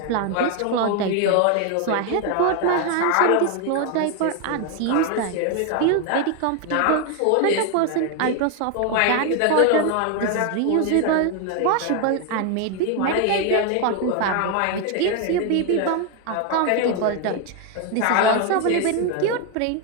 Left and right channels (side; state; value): both; different; correlation 0.01